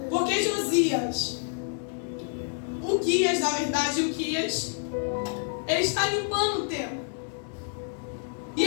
Porque Josias, na verdade, Uquias, ele está limpando o templo. E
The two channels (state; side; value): silent; right; 56 dB below the other